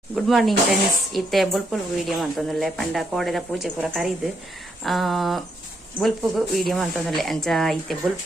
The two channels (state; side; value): normal; both; correlation 0.77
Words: Good morning friends. ಇತ್ತೆ ಬುಲ್ಪುಲ್ video ಮಂತೊಂದುಲ್ಲೆ ಪಂಡ ಕೋಡೆದ ಪೂಜೆ ಪೂರ ಕರೀದು ಬುಲ್ಪುಗು ವಿಡಿಯೋ ಮಂತೊಂದುಲ್ಲೆ ಅಂಚ ಇತ್ತೆ